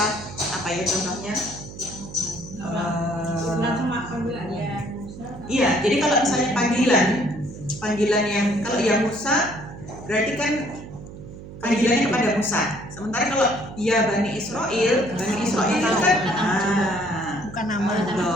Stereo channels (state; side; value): noise; right; hum, 14 dB below the sound